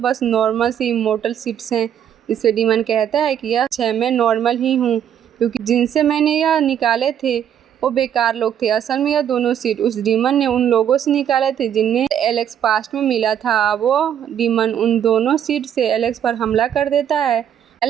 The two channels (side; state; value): left; quieter; 9.5 dB